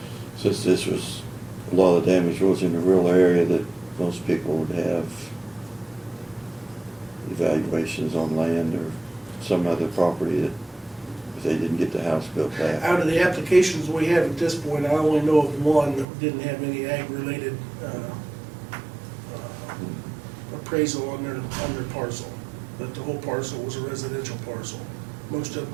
since this was, a lot of the damage was in the rural area, that most people would have evaluations on land or some other property that, if they didn't get the house built back. Out of the applications we have at this point, I only know of one that didn't have any ag-related appraisal on their parcel, but the whole parcel was a residential parcel. Most of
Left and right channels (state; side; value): drops out; left; at 16.1 s